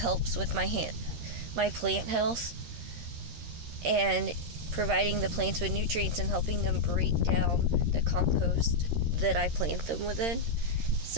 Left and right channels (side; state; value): left; late; 13 ms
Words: with my plant health and providing the plants with nutrients and helping them break down the compost that I plant them within.